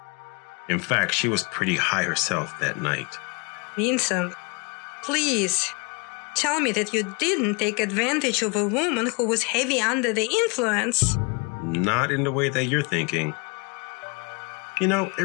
In fact, she was pretty high herself that night. Vincent, please tell me that you didn't take advantage of a woman who was heavy under the influence. Not in the way that you're thinking. You know, it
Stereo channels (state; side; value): quieter; right; 31.4 dB